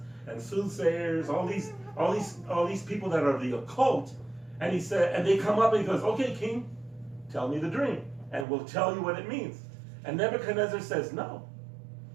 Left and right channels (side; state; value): left; drops out; at 8.5 s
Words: and soothsayers, all these people that are the occult, and he said, and they come up and he goes, okay, king, tell me the dream, and we'll tell you what it means. And Nebuchadnezzar says, no.